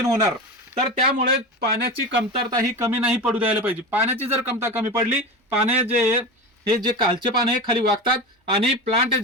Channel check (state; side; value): normal; both; correlation 0.26